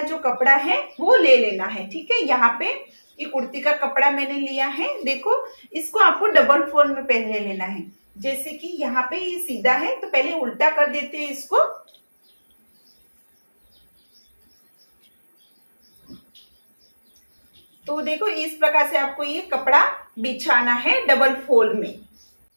जो कपड़ा है वो ले लेना है। ठीक है, यहाँ पे ये कुर्ती का कपड़ा मैंने लिया है। देखो, इसको आपको डबल फोल्ड में पहले लेना है। जैसे कि यहाँ पे ये सीधा है तो पहले उल्टा कर देते हैं इसको। तो देखो, इस प्रकार से आपको ये कपड़ा बिछाना है डबल फोल्ड में।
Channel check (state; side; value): inverted; both; correlation -1.00